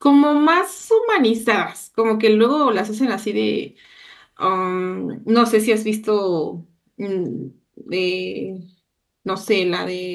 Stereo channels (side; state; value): both; identical; correlation 1.00